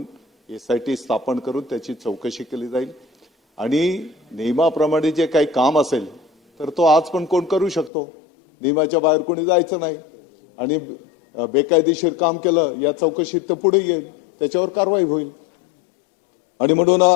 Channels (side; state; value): right; drops out; at 7.9 s